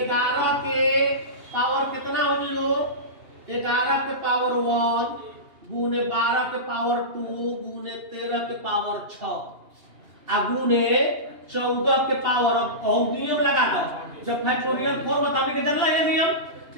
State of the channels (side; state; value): left; late; 2.8 ms